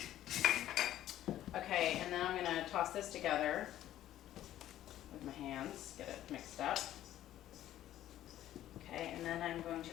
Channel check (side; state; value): right; quieter; 12.9 dB